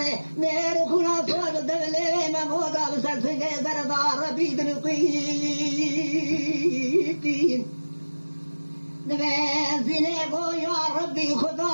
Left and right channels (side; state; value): both; inverted; correlation -1.00